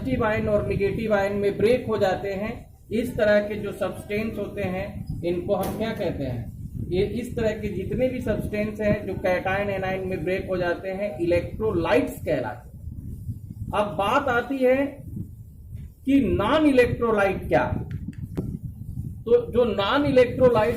आयन और नेगेटिव आयन में ब्रेक हो जाते हैं। इस तरह के जो सब्सटेंस होते हैं इनको हम क्या कहते हैं? ये इस तरह के जितने भी सब्सटेंस हैं जो कैटायन एनायन में ब्रेक हो जाते हैं, इलेक्ट्रोलाइट्स कहलाते हैं। अब बात आती है कि नॉन इलेक्ट्रोलाइट क्या है। तो जो नॉन इलेक्ट्रोलाइट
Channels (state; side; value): identical; both; correlation 1.00